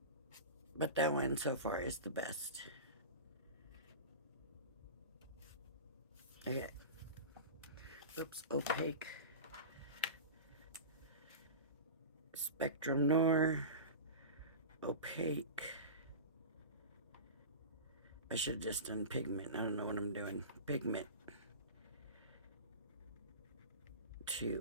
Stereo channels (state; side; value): inverted; both; correlation -0.30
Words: But that one so far is the best. Okay. Oops, opaque. Spectrum Noir. Opaque. I should have just done pigment. I don't know what I'm doing. Pigment